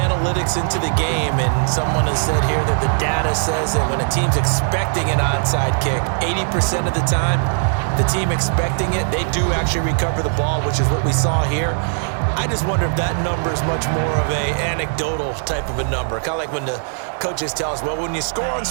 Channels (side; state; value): left; silent; 56 dB below the other